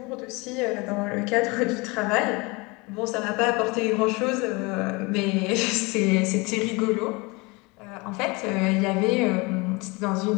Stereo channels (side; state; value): right; quieter; 26.1 dB